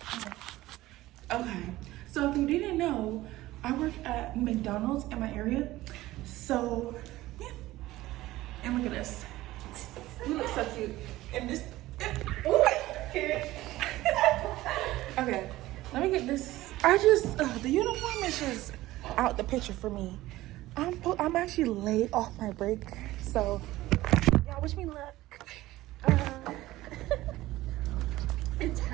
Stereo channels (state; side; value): quieter; left; 16.9 dB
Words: Okay, so if you didn't know, I work at McDonald's in my area. So yeah, and look at this. You look so cute. And this. Okay, let me get this. The uniform is just out the picture for me. I'm actually late off my break, so y'all wish me luck. It's